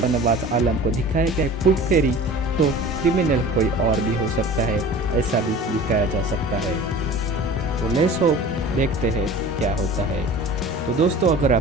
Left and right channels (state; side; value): normal; both; correlation 0.41